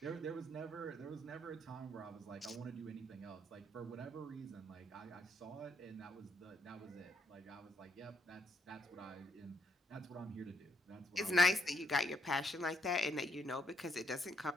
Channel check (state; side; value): normal; both; correlation 0.74